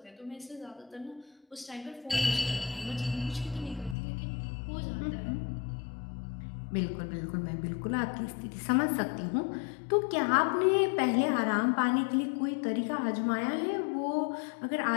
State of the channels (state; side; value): drops out; right; at 4.0 s